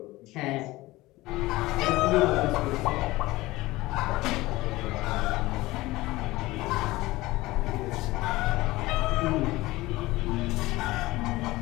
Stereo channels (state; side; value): quieter; right; 19.2 dB